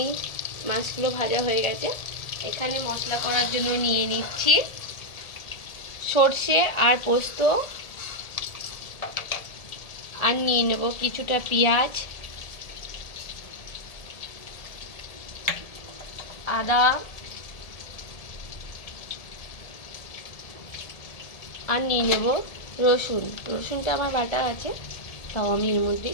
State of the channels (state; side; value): late; right; 1.7 ms